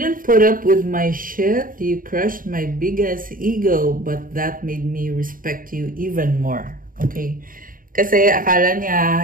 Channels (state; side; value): late; left; 0.40 ms